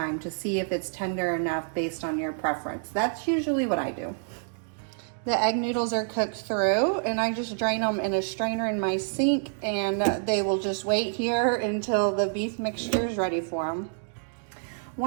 to see if it's tender enough based on your preference. That's usually what I do. The egg noodles are cooked through and I just drain them in a strainer in my sink and they will just wait here until the beef mixture is ready for them.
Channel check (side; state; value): left; silent; digital silence